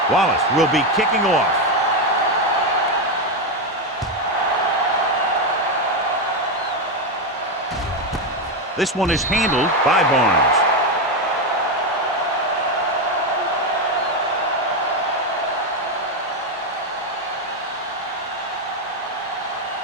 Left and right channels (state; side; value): normal; both; correlation 0.08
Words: Wallace will be kicking off. This one is handled by Barnes.